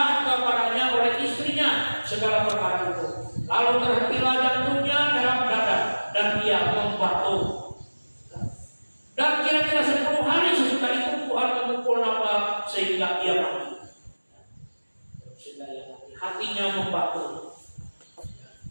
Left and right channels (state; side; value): inverted; both; correlation -1.00